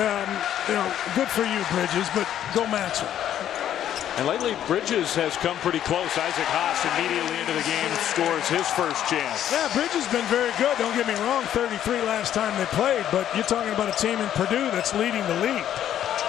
for you, Bridges, but go match him. And lately, Bridges has come pretty close. Isaac Haas immediately into the game scores his first chance. Yeah, Bridges has been very good. Don't get me wrong, 33 last time they played, but you're talking about a team in Purdue that's leading the league.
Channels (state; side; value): quieter; right; 10.8 dB